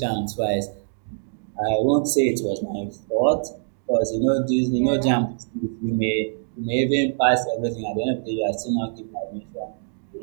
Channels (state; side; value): silent; left; 63 dB below the other